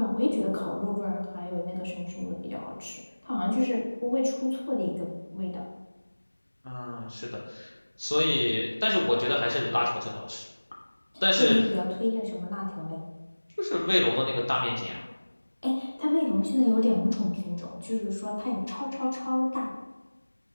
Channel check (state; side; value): inverted; both; correlation -1.00